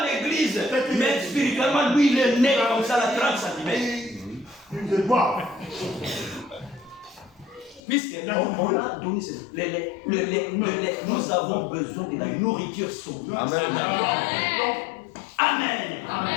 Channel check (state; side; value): drops out; right; at 7.8 s